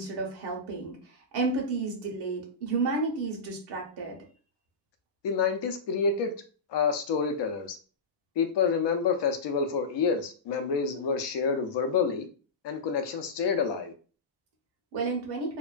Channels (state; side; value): quieter; right; 3.2 dB